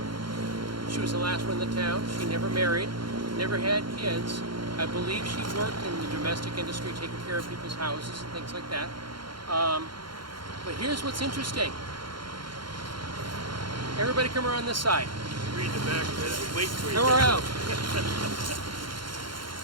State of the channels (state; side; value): late; left; 0.72 ms